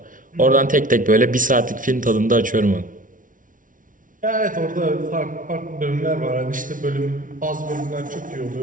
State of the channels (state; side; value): late; left; 0.38 ms